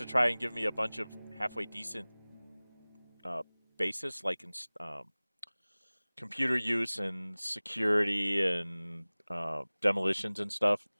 try and give me a bunch of halfway decent basis, like in computer use and security and demolitions and stuff,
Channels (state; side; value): inverted; both; correlation -1.00